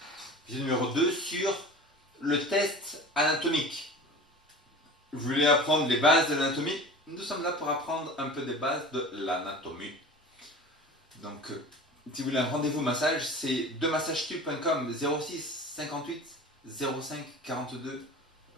Vidéo numéro 2 sur le test anatomique. Vous voulez apprendre les bases de l'anatomie? Nous sommes là pour apprendre un peu des bases de l'anatomie. Donc, si vous voulez un rendez-vous massage, c'est demassagestube.com 06 58 05 42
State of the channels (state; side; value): normal; both; correlation 0.37